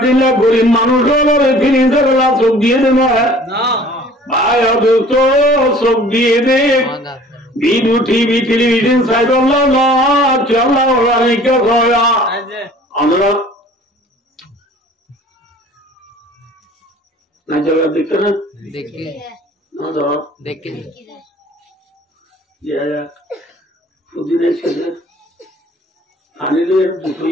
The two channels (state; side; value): normal; both; correlation 0.50